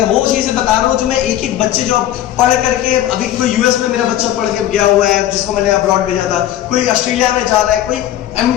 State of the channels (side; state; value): right; quieter; 12.5 dB